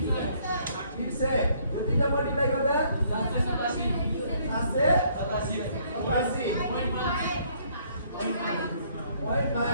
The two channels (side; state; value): both; inverted; correlation -0.65